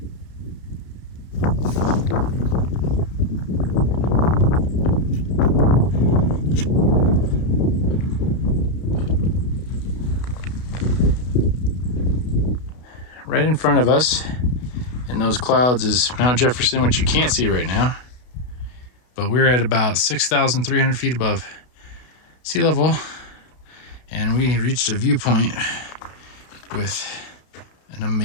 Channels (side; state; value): right; late; 32 ms